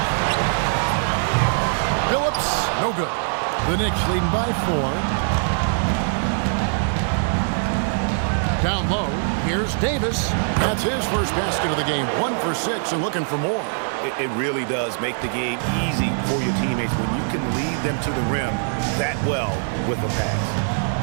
Billups, no good. The Knicks leading by 4. Down low, here's Davis. That's his first basket of the game. 1 for 6 and looking for more. It really does make the game easy for your teammates when you can lead them to the rim that well with a pass.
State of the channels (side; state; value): left; silent; 55 dB below the other